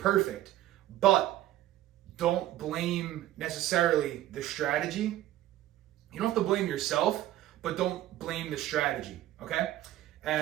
but don't blame necessarily the strategy. You don't have to blame yourself, but don't blame the strategy, okay?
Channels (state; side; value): quieter; left; 14.2 dB